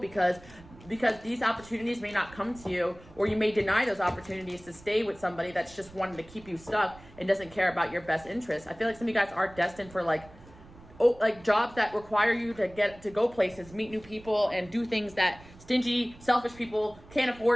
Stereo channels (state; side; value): noise; right; rumble, 22 dB below the sound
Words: these opportunities may not come to you, or you may deny those opportunities to stay with somebody that's just wanting to keep you stuck and doesn't care about your best interests. I feel like some of you guys are destined for like jobs that require you to go places, meet new people, and do things that stingy, selfish people can't